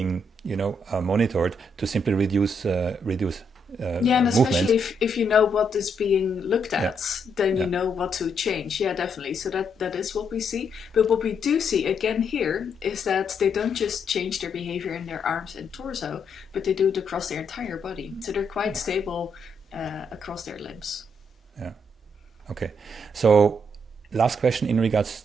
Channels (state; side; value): normal; both; correlation 0.76